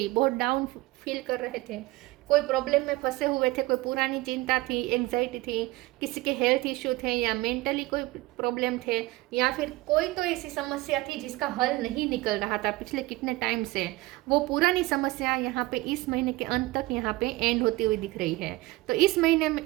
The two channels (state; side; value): quieter; left; 20.3 dB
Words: बहुत डाउन फील कर रहे थे, कोई प्रॉब्लम में फंसे हुए थे, कोई पुरानी चिंता थी, एंग्जाइटी थी, किसी के हेल्थ इश्यू थे, या मेंटली कोई प्रॉब्लम थे, या फिर कोई तो ऐसी समस्या थी जिसका हल नहीं निकल रहा था पिछले कितने टाइम से, वो पुरानी समस्या यहाँ पे इस महीने के अंत तक यहाँ पे एंड होती हुई दिख रही है। तो इस